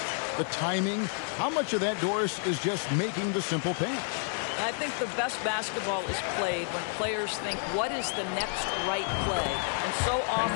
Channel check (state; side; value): silent; right; 58 dB below the other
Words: the timing. How much of that, Doris, is just making the simple pass? I think the best basketball is played when players think, what is the next right play? And so